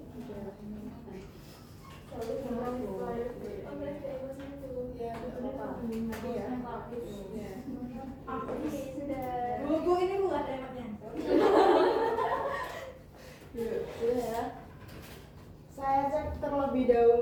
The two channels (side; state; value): both; identical; correlation 1.00